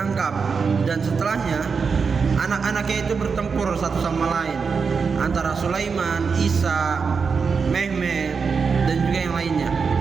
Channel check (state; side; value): quieter; left; 5.4 dB